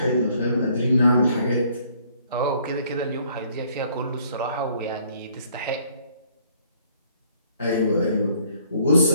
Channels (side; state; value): both; inverted; correlation -0.62